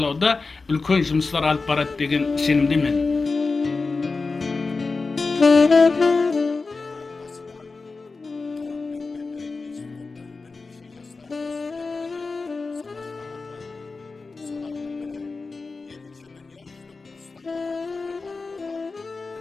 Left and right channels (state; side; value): quieter; right; 4.0 dB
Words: үлкен жұмыстар алып барады деген сенімдемін. Отан басына қауіп төнгенде институттан бірнеше жастар өз тілегі менен сауашқа атланды. Солардың бірі екінші дүния жүзілік ұрыста отан қаһарманы болған